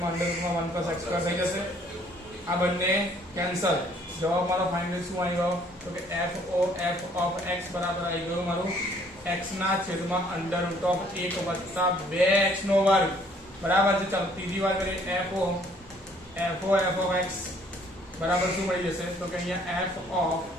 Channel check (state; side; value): normal; both; correlation 0.61